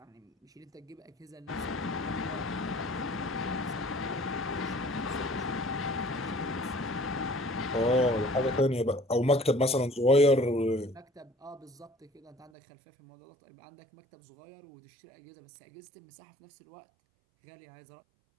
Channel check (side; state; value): left; drops out; at 12.5 s